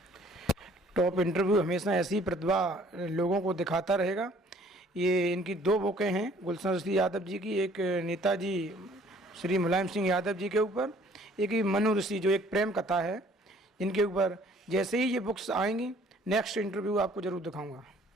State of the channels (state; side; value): normal; both; correlation 0.57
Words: टॉप इंटरव्यू हमेशा ऐसी प्रतिभा लोगों को दिखाता रहेगा। ये इनकी 2 बुकें हैं गुलशन ऋषि यादव जी की, एक नेताजी श्री मुलायम सिंह यादव जी के ऊपर, एक मनु ऋषि जो एक प्रेम कथा है, इनके ऊपर। जैसे ही ये बुक्स आएंगी नेक्स्ट इंटरव्यू आपको ज़रूर दिखाऊंगा।